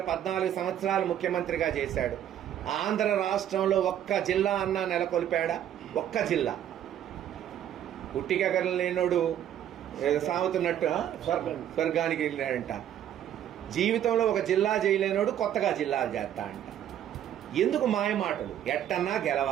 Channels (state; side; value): quieter; left; 10.7 dB